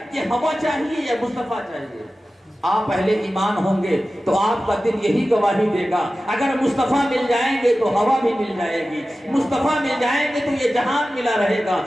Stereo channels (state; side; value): normal; both; correlation 0.95